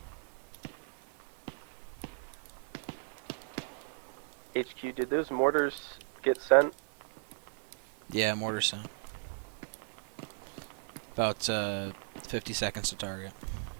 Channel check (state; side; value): silent; left; 54 dB below the other